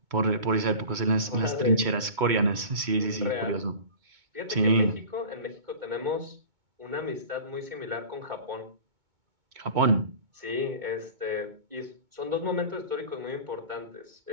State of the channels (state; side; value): late; left; 2.2 ms